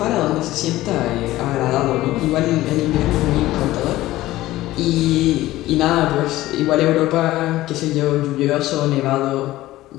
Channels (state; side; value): quieter; right; 16.4 dB